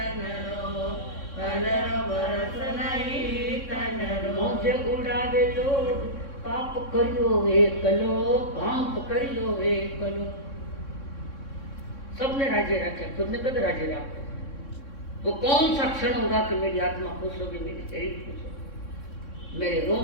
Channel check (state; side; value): late; right; 3.6 ms